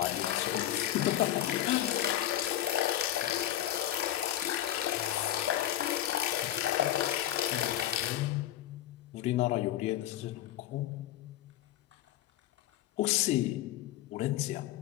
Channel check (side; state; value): right; quieter; 12.8 dB